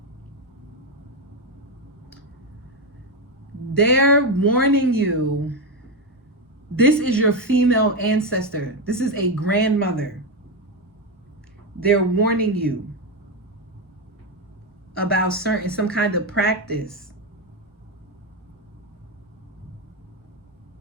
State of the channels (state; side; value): normal; both; correlation 0.10